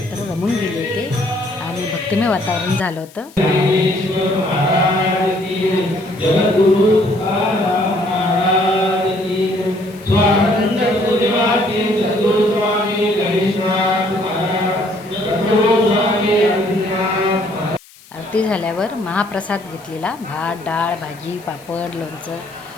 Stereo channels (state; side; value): noise; left; hiss, 24 dB below the sound